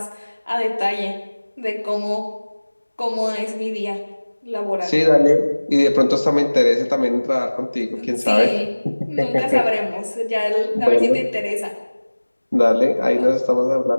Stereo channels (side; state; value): both; inverted; correlation -1.00